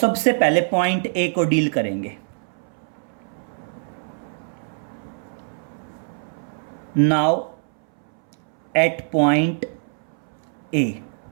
पहले पॉइंट A को डील करेंगे। Now at point A,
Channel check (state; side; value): silent; left; 63 dB below the other